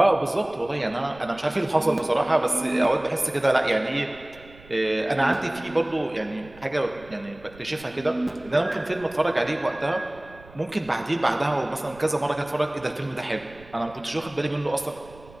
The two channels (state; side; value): noise; right; rumble, 22 dB below the sound